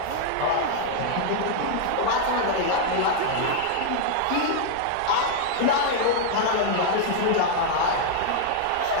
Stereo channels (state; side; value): different; both; correlation -0.01